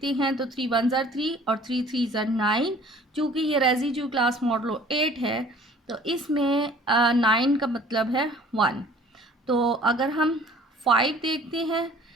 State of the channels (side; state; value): both; normal; correlation 0.51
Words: हैं तो 3 1 ज़ा 3 और 3 3 ज़ा 9। चूँकि ये रेसिड्यू क्लास मॉडलो 8 है, तो इसमें 9 का मतलब है 1। तो अगर हम 5 देखते हैं,